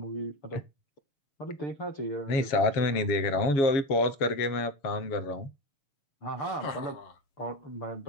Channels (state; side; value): late; right; 7.3 ms